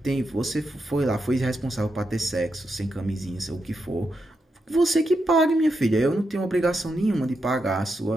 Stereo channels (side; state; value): both; normal; correlation 0.85